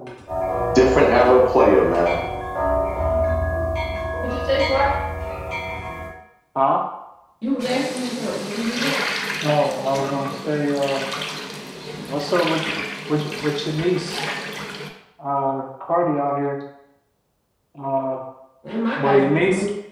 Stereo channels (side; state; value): both; identical; correlation 1.00